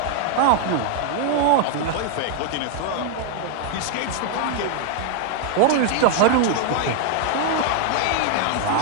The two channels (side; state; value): both; different; correlation 0.00